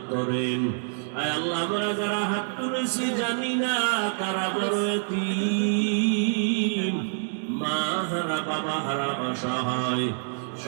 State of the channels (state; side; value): silent; left; digital silence